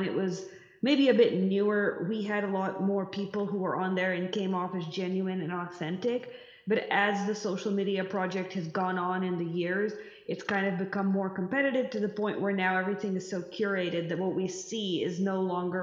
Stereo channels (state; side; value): identical; both; correlation 1.00